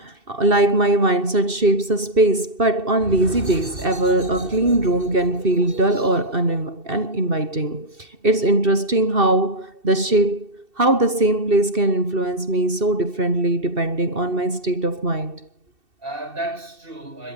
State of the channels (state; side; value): late; left; 2.7 ms